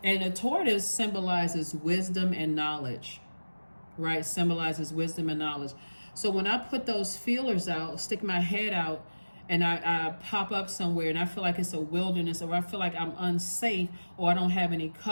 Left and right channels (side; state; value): both; inverted; correlation -1.00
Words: And a tortoise symbolizes wisdom and knowledge, right? Symbolizes wisdom and knowledge. So when I put those feelers out, stick my head out, and I pop up somewhere and I feel like it's a wilderness, or I feel like I'm unsafe, or I don't have any